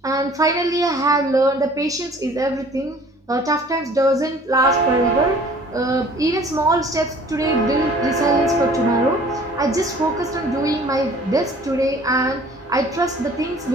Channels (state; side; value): normal; both; correlation 0.51